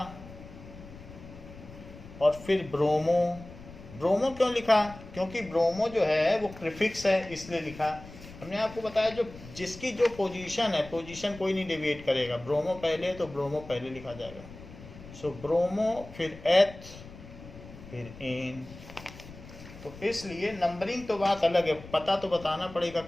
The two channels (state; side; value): noise; left; rumble, 17 dB below the sound